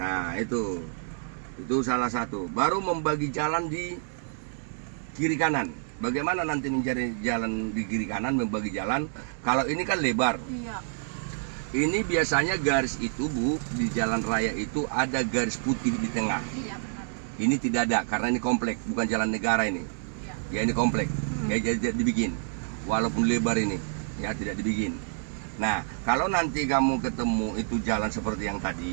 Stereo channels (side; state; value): left; silent; digital silence